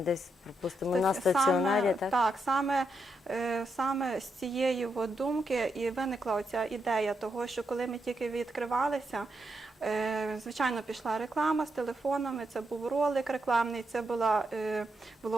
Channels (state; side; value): normal; both; correlation 0.82